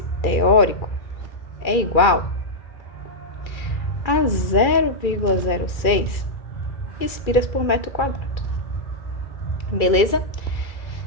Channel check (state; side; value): late; right; 2.3 ms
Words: teórico é igual a 0,06 espiras por metro quadrado. Beleza?